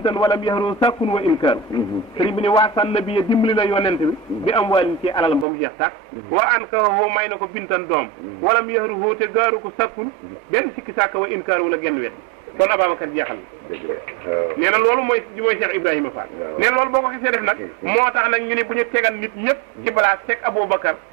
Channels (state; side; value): drops out; left; at 5.5 s